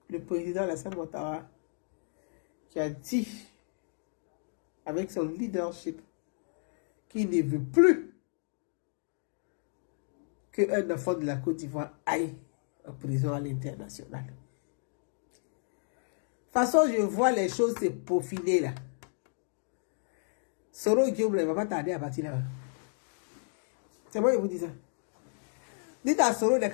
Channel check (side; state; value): right; silent; digital silence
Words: le président Alassane Ouattara, qui a dit, avec son leadership, qu'il ne veut plus qu'un enfant de la Côte d'Ivoire aille en prison à l'international. De toute façon, je vois les choses se peaufiner là. Soro Guillaume ne va pas tarder à partir là. C'est moi qui vous dis ça. Dites à Soro de